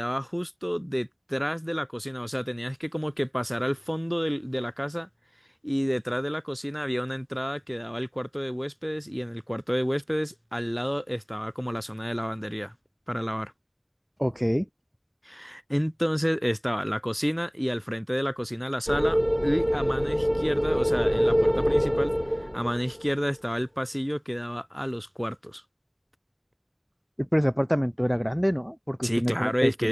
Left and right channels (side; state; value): both; identical; correlation 1.00